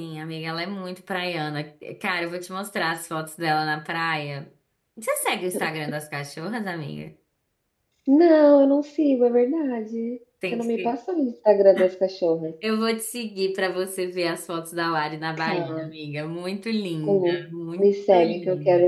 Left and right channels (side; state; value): both; identical; correlation 1.00